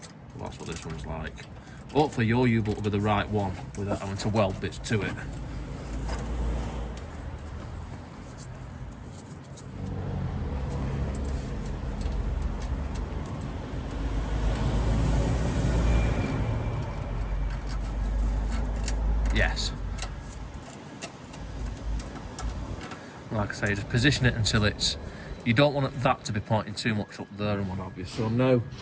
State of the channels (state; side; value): identical; both; correlation 1.00